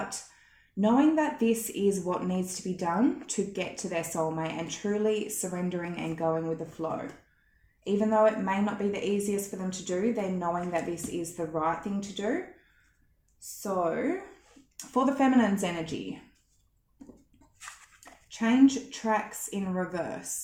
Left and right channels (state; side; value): identical; both; correlation 1.00